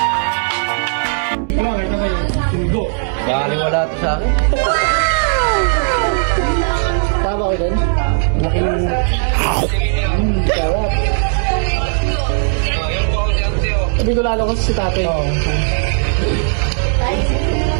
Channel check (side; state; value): left; silent; digital silence